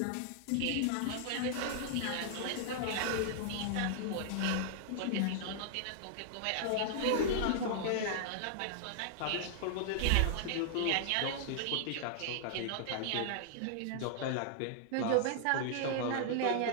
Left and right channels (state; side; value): different; both; correlation -0.01